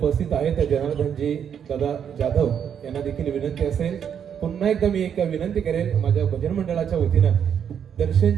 आहेत. जनार्दनजी दादा जाधव यांना देखील विनंती असेल. पुन्हा एकदा मी एक विनंती करेल माझ्या भजन मंडळाच्या वतीनं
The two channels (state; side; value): quieter; left; 8.2 dB